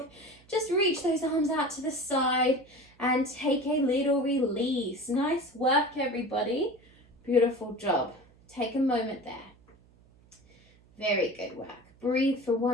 Just reach those arms out to the side and take a little release. Nice work, everybody. Beautiful job. Take a moment there. Very good work. Breathe for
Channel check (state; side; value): noise; right; hum, 29 dB below the sound